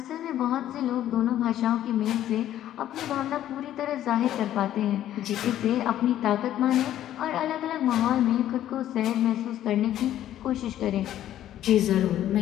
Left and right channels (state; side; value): quieter; right; 12.1 dB